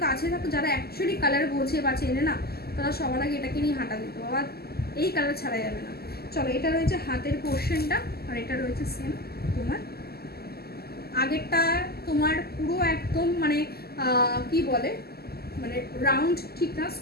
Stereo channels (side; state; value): right; late; 0.46 ms